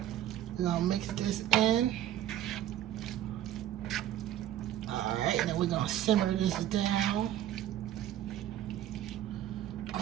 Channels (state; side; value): quieter; left; 12.0 dB